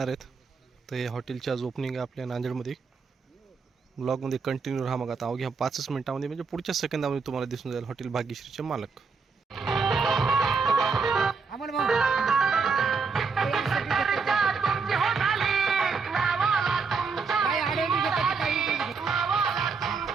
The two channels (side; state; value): left; quieter; 4.9 dB